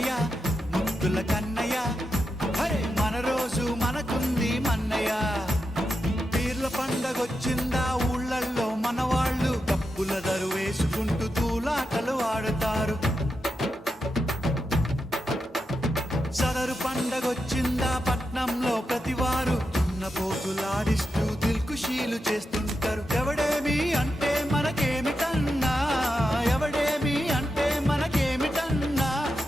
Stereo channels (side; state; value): both; normal; correlation 0.87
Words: ముద్దుల కన్నయ్య, అరే మన రోజు మనకుంది మన్నయ్య. పీర్ల పండగొచ్చిందా ఊళ్ళల్లో మనవాళ్ళు డప్పుల దరు వేసుకుంటూ తూలాటలు ఆడుతారు. సదరు పండగొచ్చిందా పట్నంలో ప్రతివారు దున్నపోతులాడిస్తూ దిల్కుషీలు చేస్తుంటారు. ఎవడేమి అంటే మనకేమిటన్నా, ఎవడేమి అంటే మనకేమిటన్నా,